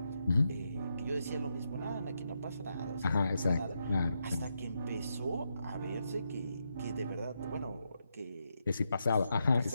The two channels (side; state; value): both; inverted; correlation -0.83